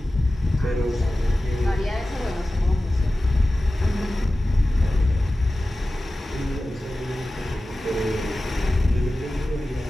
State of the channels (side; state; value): both; normal; correlation 0.95